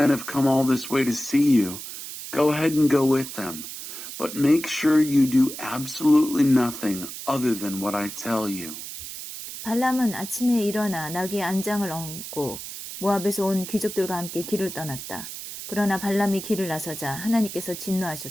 have come all this way to see you, go ahead and go with them. But make sure you do absolutely nothing other than what I tell you. 발람은 아침에 일어나 나귀의 안장을 얹고 모압에서 온 귀족들과 함께 길을 떠났다. 그러나 발람이 길을 나서자 하나님께서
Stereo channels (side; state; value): right; noise; hiss, 10 dB below the sound